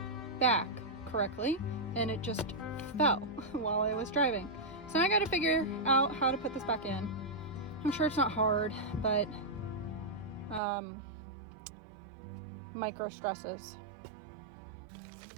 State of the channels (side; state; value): left; drops out; at 10.6 s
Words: back correctly and it just fell while I was driving. So I got to figure out how to put this back in. I'm sure it's not hard, but micro stresses.